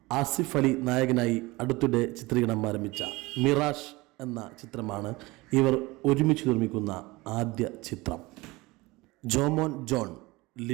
ആസിഫ് അലി നായകനായി അടുത്തിടെ ചിത്രീകരണം ആരംഭിച്ച മിറാഷ് എന്ന ചിത്രമാണ് ഇവർ ഒരുമിച്ച് നിർമ്മിക്കുന്ന ആദ്യ ചിത്രം. ജോമോൻ ജോൺ,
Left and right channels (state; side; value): quieter; left; 22.0 dB